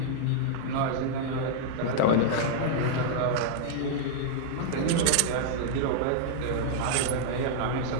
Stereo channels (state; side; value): different; both; correlation -0.01